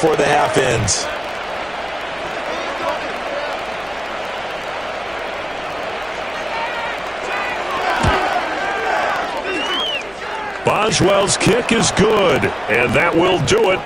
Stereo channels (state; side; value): noise; right; hum, 25 dB below the sound